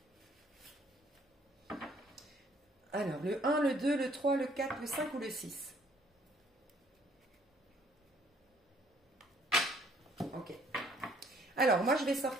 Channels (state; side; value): normal; both; correlation 0.62